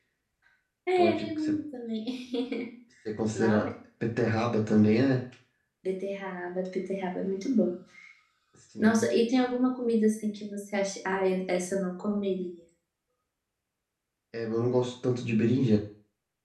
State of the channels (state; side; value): identical; both; correlation 1.00